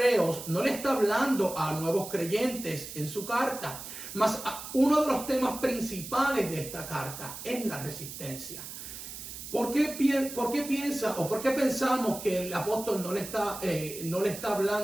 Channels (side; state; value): right; noise; hiss, 10 dB below the sound